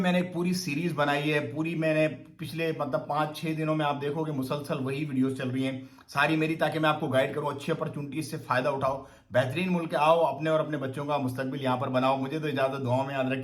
एक पूरी सीरीज बनाई है। पूरी मैंने पिछले मतलब 5-6 दिनों में आप देखोगे मुसलसल वही वीडियोस चल रही हैं सारी मेरी, ताकि मैं आपको गाइड करूं। अच्छी अपॉर्चुनिटी से फायदा उठाओ, बेहतरीन मुल्क आओ, अपने और अपने बच्चों का मुस्तकबिल यहाँ पर बनाओ। मुझे तो इजाजत, दुआओं में याद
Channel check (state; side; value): identical; both; correlation 1.00